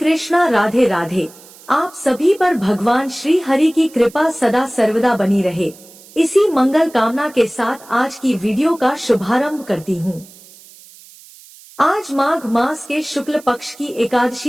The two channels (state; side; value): noise; right; hiss, 22 dB below the sound